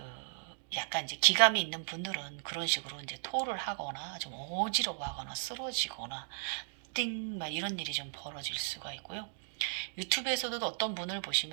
약간 이제 기감이 있는 분들은 그런 식으로 이제 토를 하거나 좀 어지러워하거나 쓰러지거나 띵 막 이런 일이 좀 벌어질 수가 있고요. 유튜브에서도 어떤 분을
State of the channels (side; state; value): left; silent; digital silence